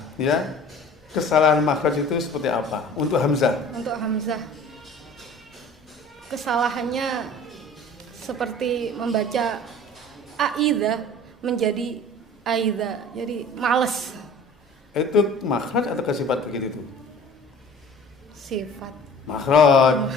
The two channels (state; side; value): normal; both; correlation 0.45